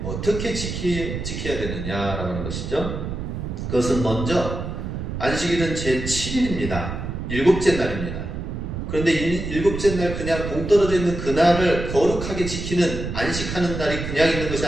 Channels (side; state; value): right; noise; rumble, 5 dB below the sound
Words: 어떻게 지켜야 되느냐라고 하는 것이죠. 그것은 먼저 안식일은 제7일입니다. 일곱째 날입니다. 그런데 일곱째 날 그냥 동떨어져 있는 그날을 거룩하게 지키는 안식하는 날이 그냥 있는 것이